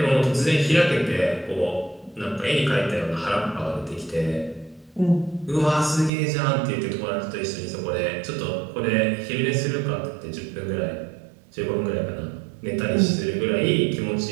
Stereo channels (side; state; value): left; drops out; at 6.1 s